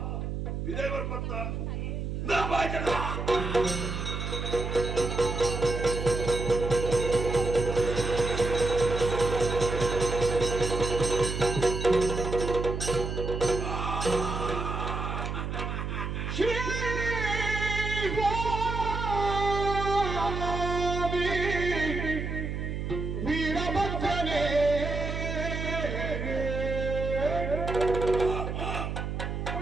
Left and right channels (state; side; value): noise; right; hum, 4 dB below the sound